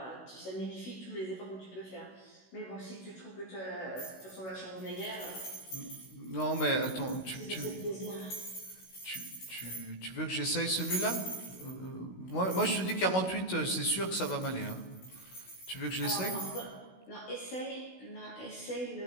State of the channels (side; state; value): right; late; 16 ms